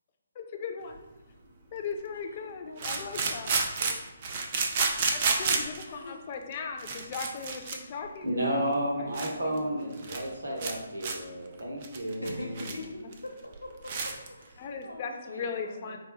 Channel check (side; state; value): both; inverted; correlation -0.66